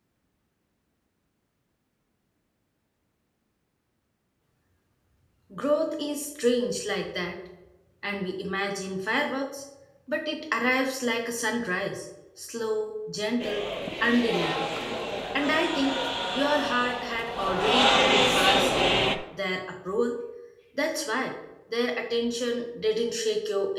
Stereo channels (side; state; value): both; identical; correlation 1.00